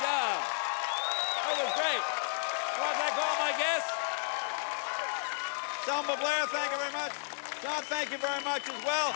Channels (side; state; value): right; silent; digital silence